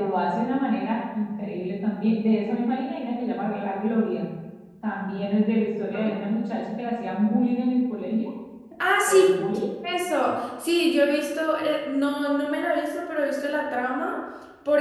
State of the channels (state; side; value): identical; both; correlation 1.00